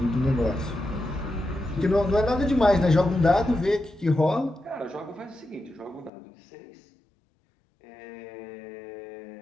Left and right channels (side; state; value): right; drops out; at 6.1 s